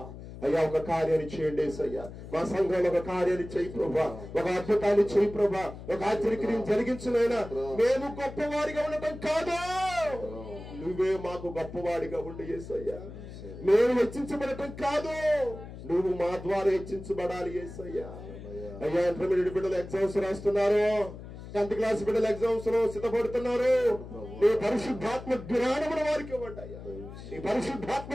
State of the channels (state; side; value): noise; left; hum, 13 dB below the sound